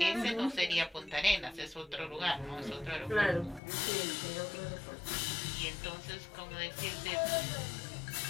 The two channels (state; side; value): drops out; right; at 3.6 s